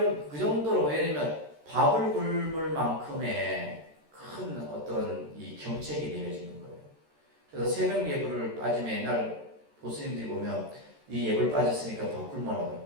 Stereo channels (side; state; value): left; late; 13 ms